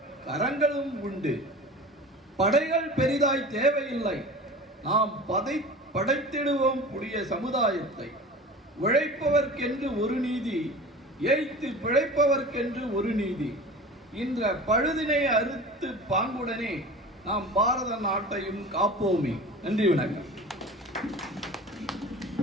கரங்களும் உண்டு. படைகள் பெரிதாய் தேவையில்லை, நாம் படைத்திடுவோம் புதிய சமுதாயத்தை. உழைப்பவர்க்கென்று ஒரு நீதி, ஏய்த்து பிழைப்பவர்க்கென்று ஒரு நீதி. இன்ற பழுதினை அறுத்து பாங்குடனே நாம் பாரத நாட்டையும் காப்போமே. நன்றி, வணக்கம்.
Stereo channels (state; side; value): normal; both; correlation 0.36